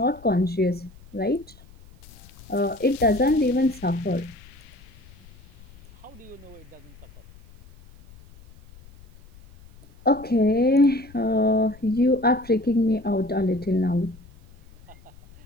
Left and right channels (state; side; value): noise; left; rumble, 23 dB below the sound